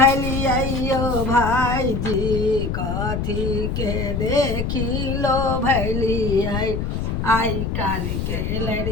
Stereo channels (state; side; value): noise; left; rumble, 2 dB below the sound